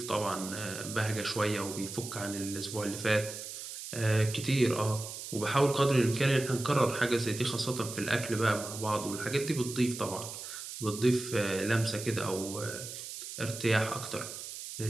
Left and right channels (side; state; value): right; noise; hiss, 9 dB below the sound